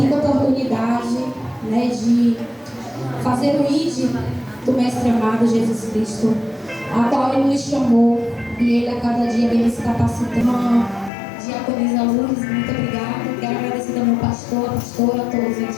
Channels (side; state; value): right; drops out; at 11.1 s